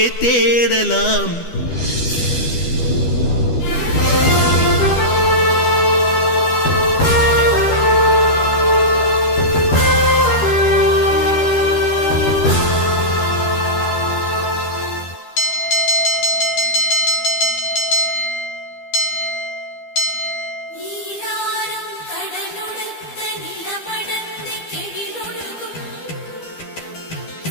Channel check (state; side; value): late; right; 12 ms